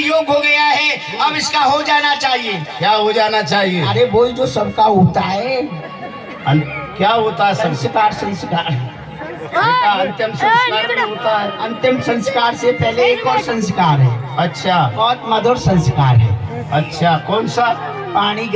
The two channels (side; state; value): both; identical; correlation 1.00